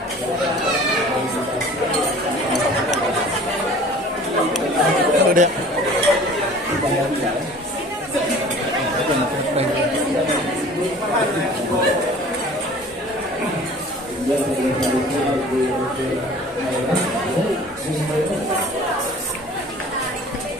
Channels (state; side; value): normal; both; correlation 0.46